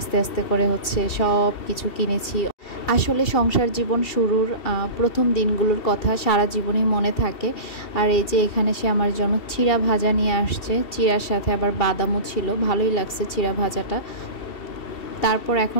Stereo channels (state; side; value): late; right; 2.7 ms